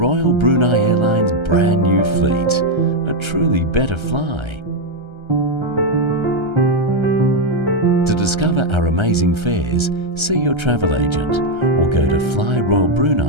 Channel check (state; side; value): late; left; 1.3 ms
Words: Brunei Airlines' brand new fleet, a truly better fly. To discover our amazing fares, see your travel agent or go to